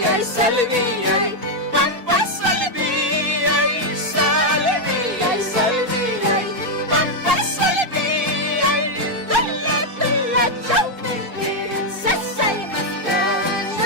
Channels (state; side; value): normal; both; correlation 0.01